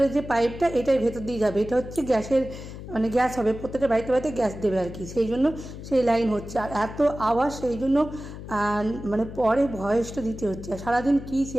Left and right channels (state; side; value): noise; left; hum, 12 dB below the sound